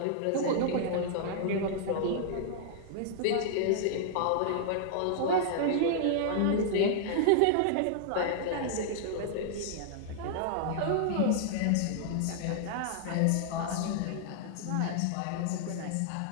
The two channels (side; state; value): both; different; correlation -0.01